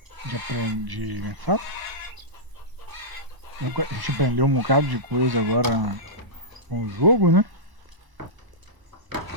aprender, como é que fala? A gente aprendeu um bocado de coisa agora com o jogo, né?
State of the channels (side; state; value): left; late; 1.1 ms